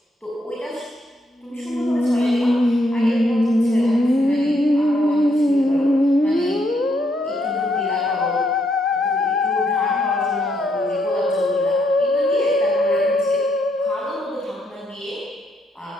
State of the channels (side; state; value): both; normal; correlation 0.75